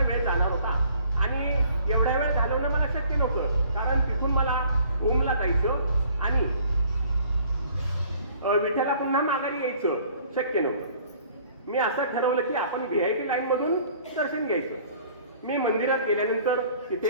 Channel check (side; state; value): both; inverted; correlation -0.55